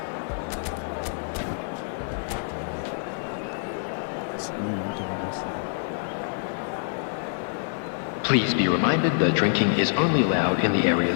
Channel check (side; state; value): right; silent; digital silence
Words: Please be reminded that drinking is only allowed in the